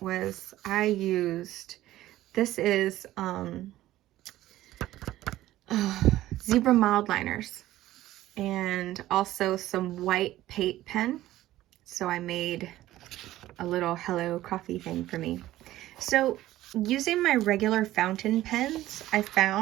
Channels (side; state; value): left; quieter; 15.0 dB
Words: was I used, this is Zebra mild liners. and also some white paint pen. So I made a little hello coffee thing for me. So using my regular fountain pens, I